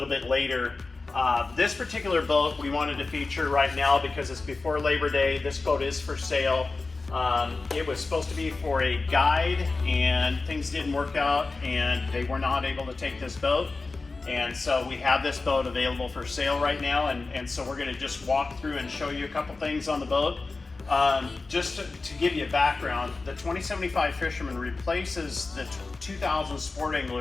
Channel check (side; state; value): right; quieter; 3.7 dB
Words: bit later. This particular boat we wanted to feature right now because it's before Labor Day. This boat is for sale. It was supposed to be for a guide, and things didn't work out, and they were not able to take this boat. And so we have this boat available for sale right now, and so we're going to just walk through and show you a couple things on the boat. Just to give you a background, the 2075 Fisherman replaces the 2000 Sport